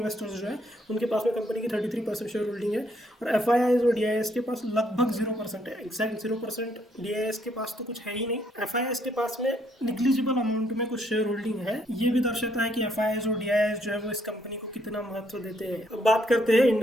जो है उनके पास में कंपनी की 33% शेयर होल्डिंग है। और FIIs और DIIs के पास लगभग 0% है, एग्जैक्ट 0%। DIIs के पास तो कुछ है ही नहीं। FIIs के पास में निग्लिजिबल अमाउंट में कुछ शेयर होल्डिंग है। ये भी दर्शाता है कि FIIs और DIIs जो है वो इस कंपनी को कितना महत्व देते हैं। अब बात करते हैं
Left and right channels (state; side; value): normal; both; correlation 0.70